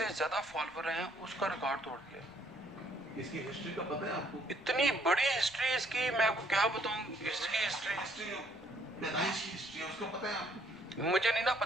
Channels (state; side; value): noise; left; rumble, 24 dB below the sound